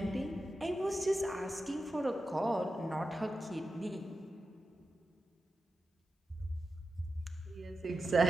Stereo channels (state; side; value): normal; both; correlation 0.90